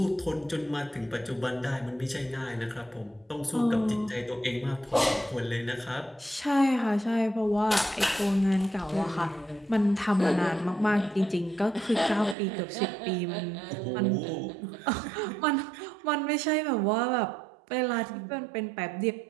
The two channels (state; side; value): drops out; left; at 12.4 s